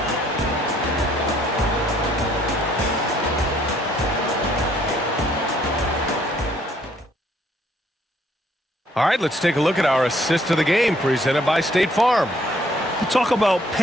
All right, let's take a look at our assist of the game presented by State Farm. You talk about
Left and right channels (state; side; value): normal; both; correlation 0.65